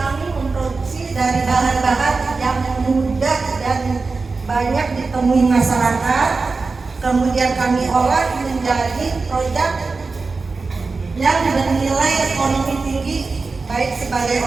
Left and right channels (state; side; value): quieter; left; 4.1 dB